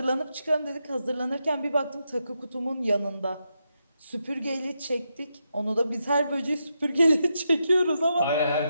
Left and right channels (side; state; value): both; inverted; correlation -0.84